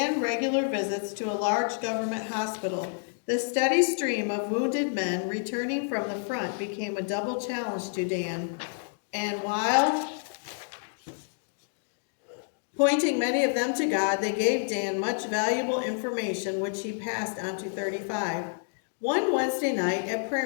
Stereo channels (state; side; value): silent; right; digital silence